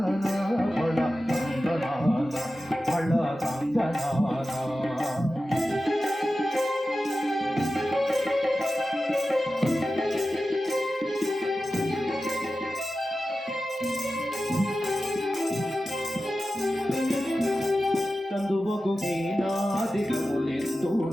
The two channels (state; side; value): normal; both; correlation 0.93